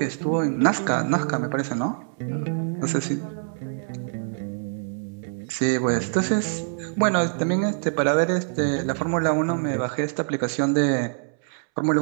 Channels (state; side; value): silent; left; 62 dB below the other